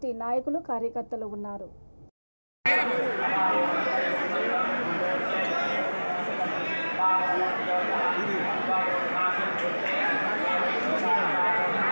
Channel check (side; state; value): both; inverted; correlation -1.00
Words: నాయకులు కార్యకర్తలు ఉన్నారు.